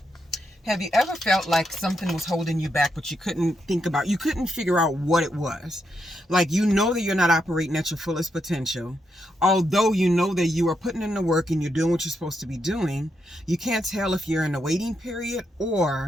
have you ever felt like something was holding you back, but you couldn't figure out what it was? Like, you know that you're not operating at your fullest potential. Although you know that you are putting in the work and you're doing what you're supposed to be doing, you can't tell if you're in a waiting period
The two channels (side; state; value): both; normal; correlation 0.82